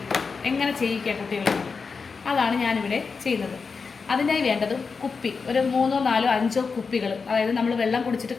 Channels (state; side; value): quieter; right; 5.0 dB